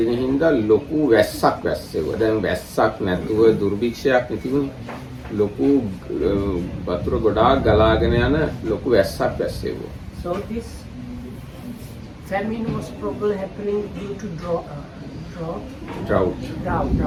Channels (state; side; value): identical; both; correlation 1.00